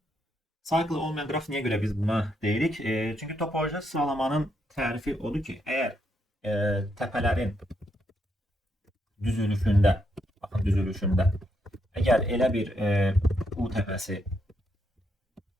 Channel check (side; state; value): both; normal; correlation 0.78